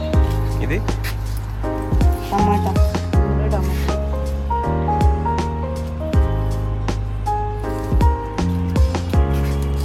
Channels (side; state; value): both; identical; correlation 1.00